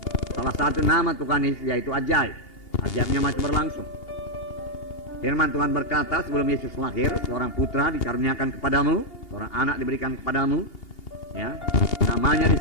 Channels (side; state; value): right; late; 2.8 ms